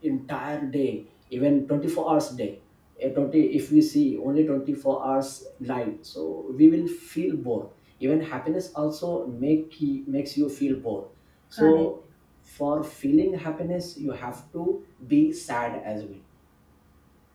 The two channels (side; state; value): both; identical; correlation 1.00